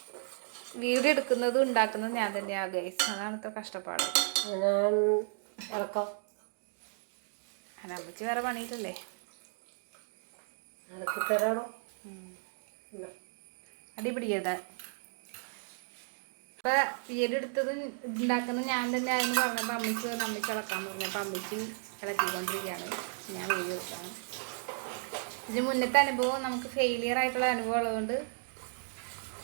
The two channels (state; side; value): silent; left; digital silence